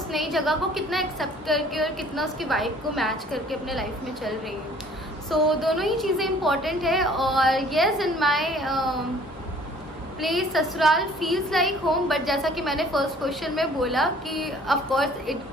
नई जगह को कितना एक्सेप्ट करके और कितना उसकी वाइब को मैच करके अपने लाइफ में चल रही हूँ। दोनों ही चीज़ें इम्पॉर्टेंट है। और येस, इन माई प्लेस ससुराल फील्स लाइक होम, बट जैसा कि मैंने फर्स्ट क्वेश्चन में बोला कि of course it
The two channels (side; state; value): both; normal; correlation 0.54